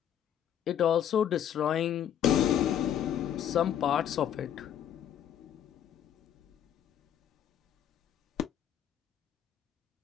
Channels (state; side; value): quieter; right; 9.9 dB